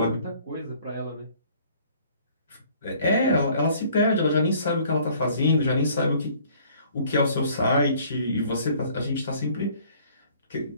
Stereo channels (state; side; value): inverted; both; correlation -0.57